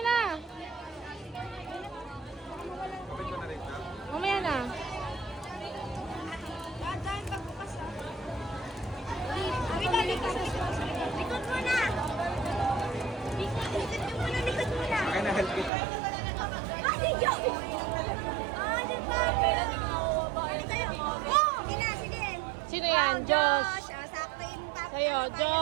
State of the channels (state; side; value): drops out; left; at 15.7 s